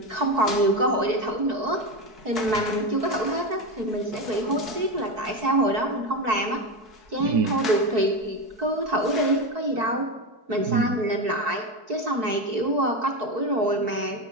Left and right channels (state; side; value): late; left; 4.6 ms